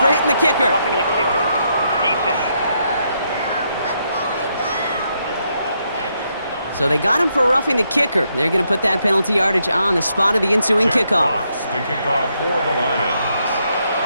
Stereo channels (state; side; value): inverted; both; correlation -0.78